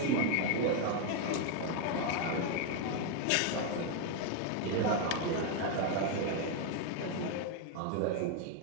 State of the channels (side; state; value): both; different; correlation 0.00